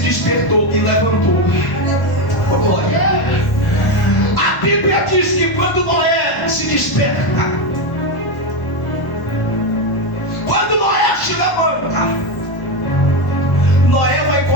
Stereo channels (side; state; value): right; late; 1.0 ms